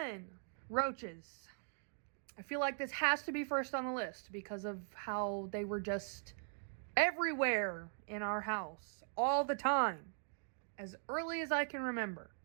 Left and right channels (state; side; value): silent; left; digital silence